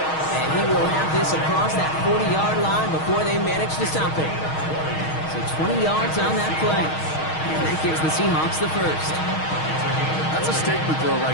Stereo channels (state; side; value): late; right; 6.4 ms